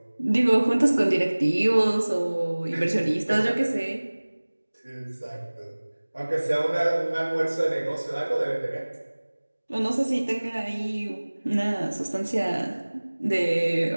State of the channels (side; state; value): both; inverted; correlation -1.00